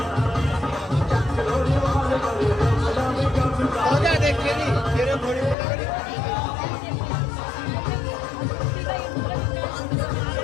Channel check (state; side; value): drops out; right; at 5.6 s